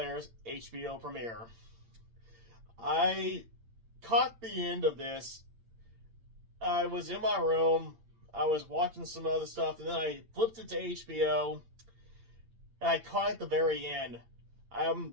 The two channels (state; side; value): late; left; 8.8 ms